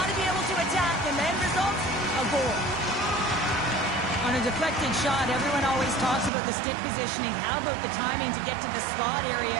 to be able to attack. And the end result, a goal. On a deflected shot, everyone always talks about the stick positioning. How about the timing to get to the slot area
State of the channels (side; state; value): left; drops out; at 6.3 s